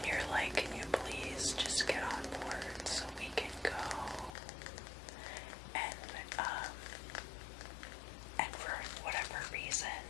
you're like, can you please just get on board so we can go? And for whatever reason,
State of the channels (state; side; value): drops out; right; at 4.4 s